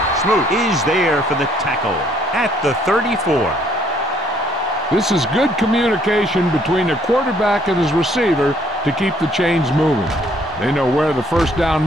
Smoot is there for the tackle at the 34. This is good communication between the quarterback and his receiver to keep the chains moving. They know where the first down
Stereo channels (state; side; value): normal; both; correlation 0.65